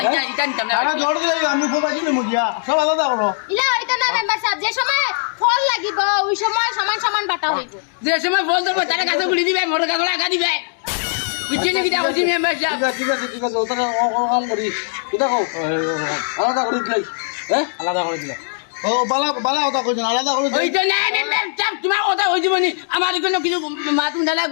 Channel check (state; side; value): silent; right; digital silence